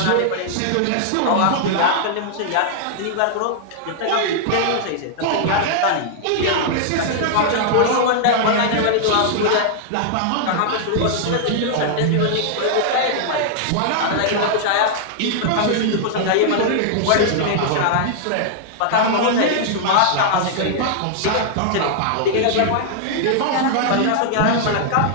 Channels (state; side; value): different; both; correlation -0.01